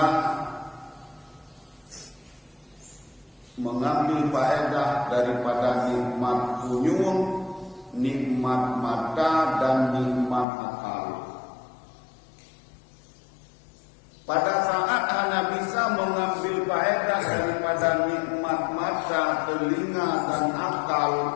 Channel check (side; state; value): right; drops out; at 10.5 s